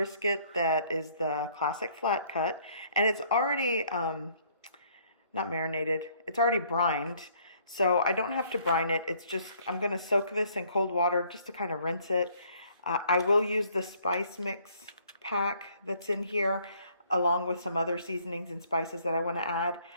that is the classic flat cut, and it's already not marinated, it's already brined. So I don't have to brine it. It's just, I'm gonna soak this in cold water just to kind of rinse it. I will use the spice mix pack that's in here along with some other seasonings and spices that I want to add.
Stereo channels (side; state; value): both; inverted; correlation -0.63